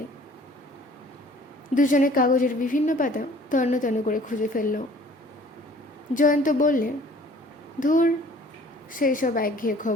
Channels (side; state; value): both; normal; correlation 0.52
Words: দুজনে কাগজের বিভিন্ন পাতা তন্ন তন্ন করে খুঁজে ফেলল। জয়ন্ত বললে, ধুর, সেই সব একঘেয়ে